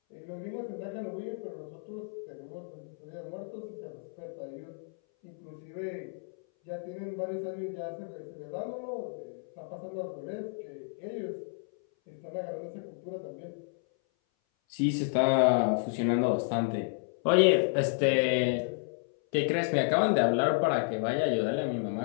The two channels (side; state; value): right; silent; 57 dB below the other